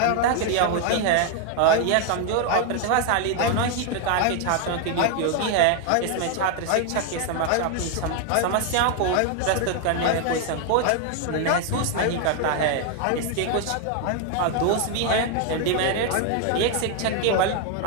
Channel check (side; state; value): both; different; correlation 0.00